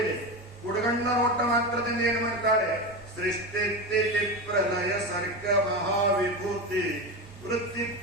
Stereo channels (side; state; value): both; normal; correlation 0.20